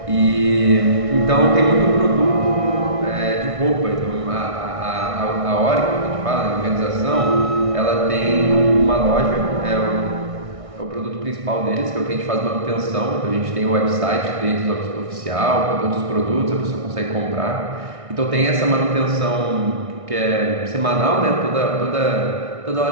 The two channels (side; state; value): left; late; 1.6 ms